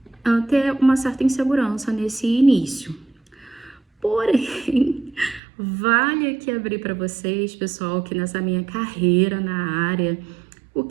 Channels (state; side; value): drops out; left; at 5.4 s